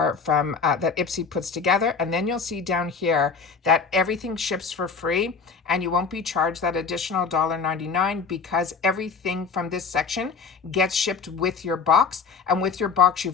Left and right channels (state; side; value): quieter; right; 5.3 dB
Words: from, that Ipsy puts together. And then you'll see down here that everything ships for free and you won't be charged that additional $1.99 because everything from this section gets shipped with your box. And with your box,